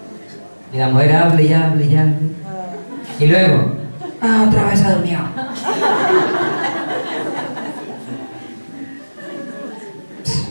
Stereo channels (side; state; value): both; inverted; correlation -1.00